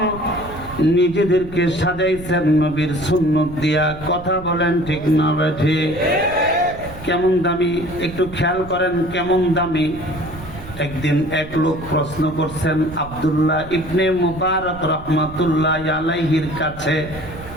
নিজেদেরকে সাজাইছেন নবীর সুন্নত দিয়া। কথা বলেন ঠিক না ঠিক? কেমন দামি একটু খেয়াল করেন, কেমন দামি। একদিন এক লোক প্রশ্ন করছেন আব্দুল্লাহ ইবনে মুবারক রাহমাতুল্লাহ আলাইহির কাছে।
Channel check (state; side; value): noise; right; rumble, 14 dB below the sound